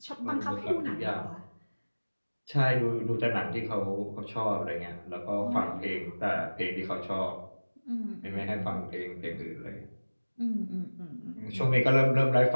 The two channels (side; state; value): both; inverted; correlation -1.00